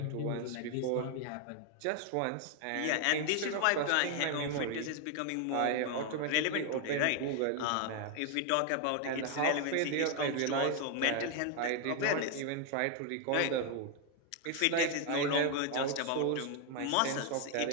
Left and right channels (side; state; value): both; different; correlation 0.01